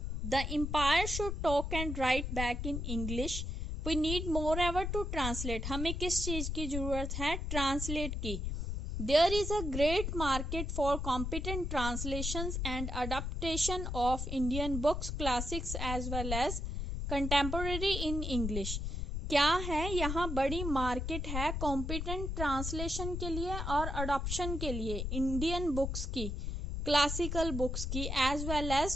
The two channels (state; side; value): noise; left; rumble, 3 dB below the sound